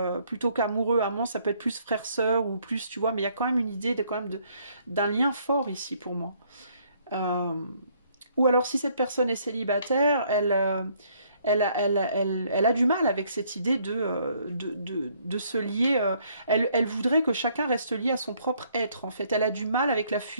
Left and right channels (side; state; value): both; inverted; correlation -0.65